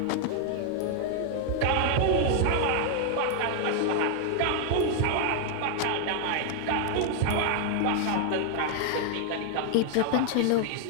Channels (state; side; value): different; both; correlation 0.00